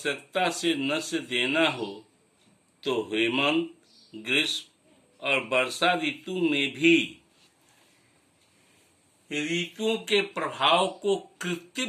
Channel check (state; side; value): identical; both; correlation 1.00